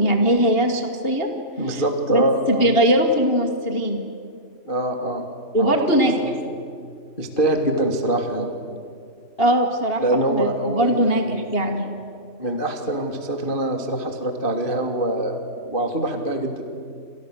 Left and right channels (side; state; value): right; late; 2.8 ms